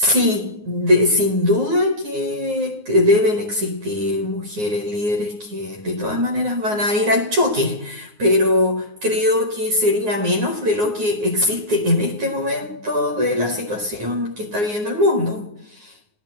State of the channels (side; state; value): left; late; 9.5 ms